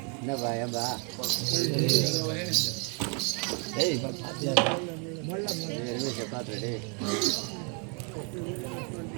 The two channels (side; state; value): left; quieter; 36.1 dB